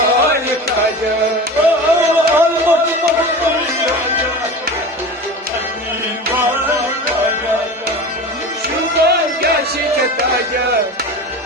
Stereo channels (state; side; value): normal; both; correlation 0.32